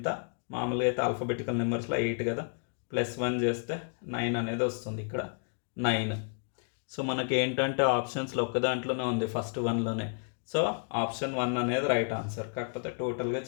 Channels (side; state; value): right; silent; 57 dB below the other